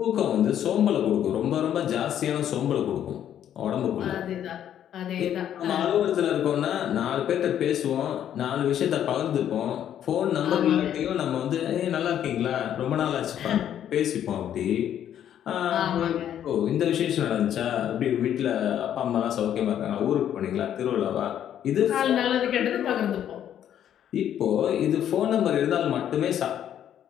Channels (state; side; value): quieter; right; 10.3 dB